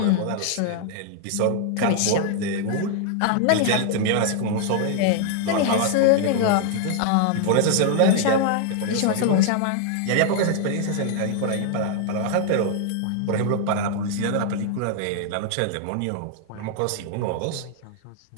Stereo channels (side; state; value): both; different; correlation 0.00